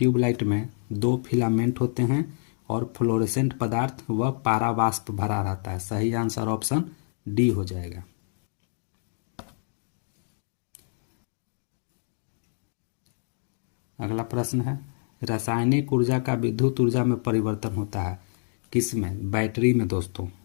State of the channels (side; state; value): right; silent; digital silence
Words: में 2 फिलामेंट होते हैं और फ्लोरेसेंट पदार्थ व पारावाष्प भरा रहता है। सही आंसर ऑप्शन डी हो जाएगा। अगला प्रश्न है, रासायनिक ऊर्जा का विद्युत ऊर्जा में परिवर्तन होता है किसमें? बैटरी में दोस्तों।